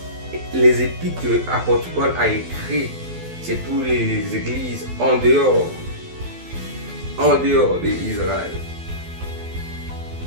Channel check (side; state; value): left; late; 12 ms